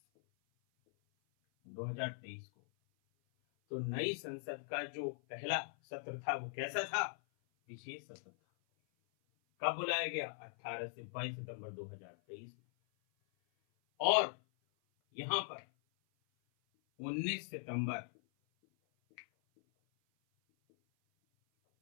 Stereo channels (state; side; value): silent; right; 51 dB below the other